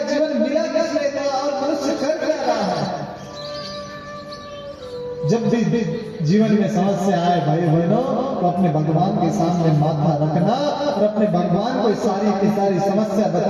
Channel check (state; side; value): identical; both; correlation 1.00